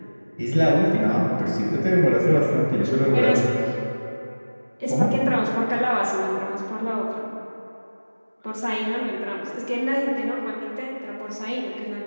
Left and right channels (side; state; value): both; inverted; correlation -1.00